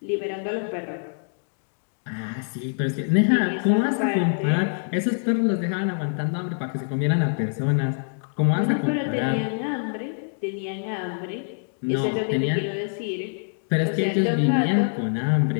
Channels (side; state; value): right; silent; digital silence